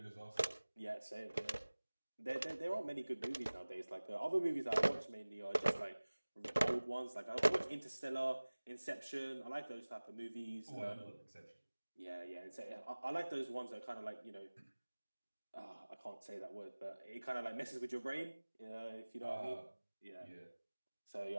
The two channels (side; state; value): both; inverted; correlation -1.00